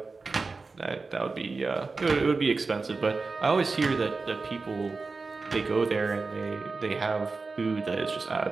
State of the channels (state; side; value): quieter; left; 4.1 dB